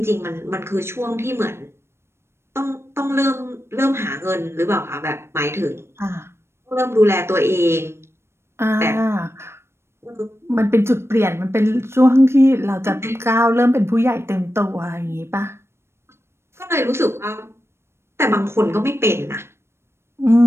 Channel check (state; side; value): late; left; 0.12 ms